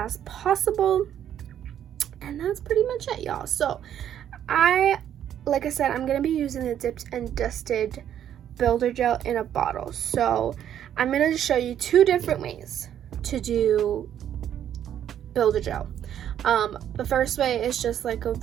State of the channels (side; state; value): left; quieter; 10.2 dB